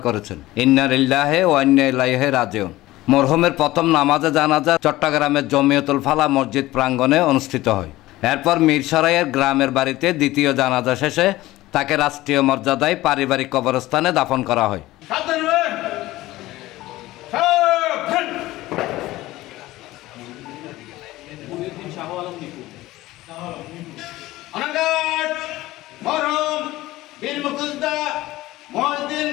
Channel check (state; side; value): quieter; right; 17.4 dB